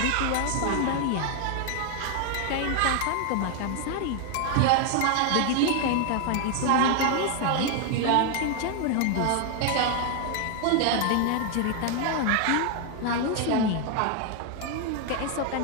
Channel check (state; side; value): different; both; correlation 0.00